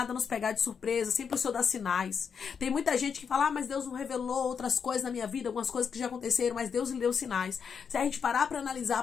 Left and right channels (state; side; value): quieter; right; 6.6 dB